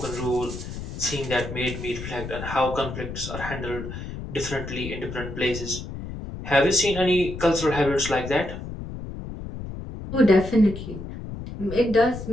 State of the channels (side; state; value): left; noise; rumble, 9 dB below the sound